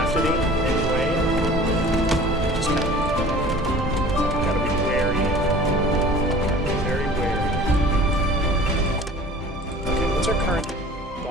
to be anyway. Just kind of gotta be wary. Very wary. Okay, what's our current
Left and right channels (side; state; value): both; normal; correlation 0.44